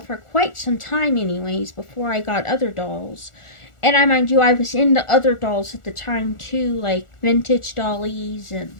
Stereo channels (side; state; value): right; late; 1.4 ms